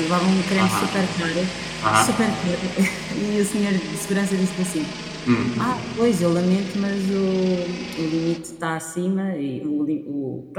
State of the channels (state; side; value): identical; both; correlation 1.00